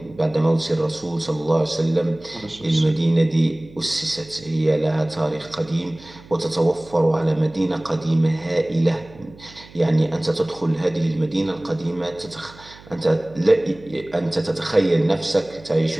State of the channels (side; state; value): right; noise; hum, 22 dB below the sound